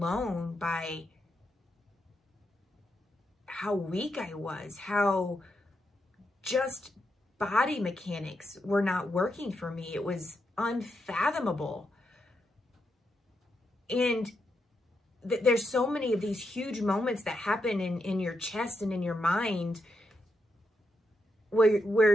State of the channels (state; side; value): normal; both; correlation 0.83